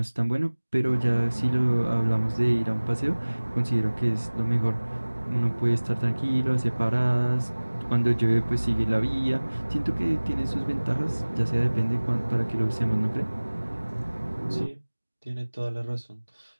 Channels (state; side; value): inverted; both; correlation -1.00